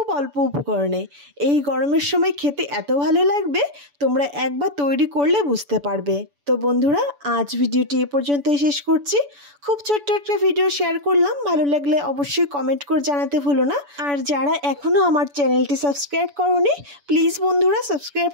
অল্প উপকরণে। এই গরমের সময় খেতে এত ভালো লাগবে, তোমরা একবার তৈরি করলে বুঝতে পারবে। তো বন্ধুরা, আজ ভিডিওটি এ পর্যন্তই শেষ করছি। খুব ছোট্ট একটা ভিডিও শেয়ার করলাম, ভালো লাগলে অবশ্যই কমেন্ট করে জানাতে ভুলো না। আর যারা এখনও আমার চ্যানেলটি সাবস্ক্রাইব করোনি, প্লিজ বন্ধুরা সাবস্ক্রাইব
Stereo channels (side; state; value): left; late; 7.0 ms